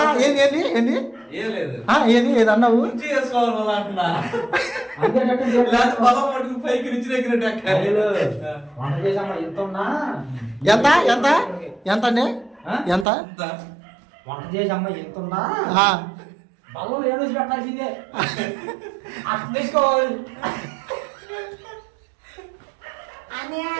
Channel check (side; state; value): left; drops out; at 13.1 s